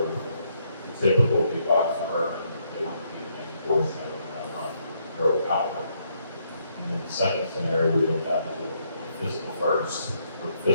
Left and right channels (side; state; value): both; inverted; correlation -0.74